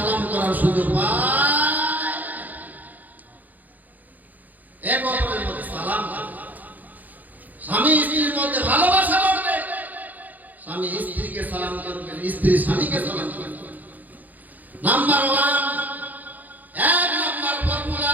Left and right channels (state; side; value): late; left; 0.082 ms